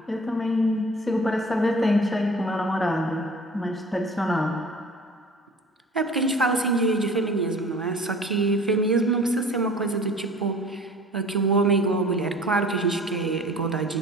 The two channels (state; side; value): normal; both; correlation 0.45